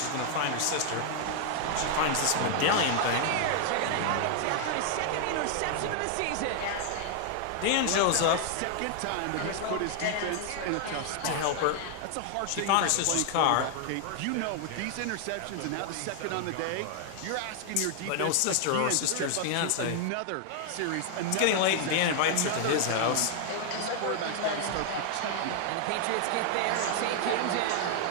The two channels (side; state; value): both; different; correlation 0.00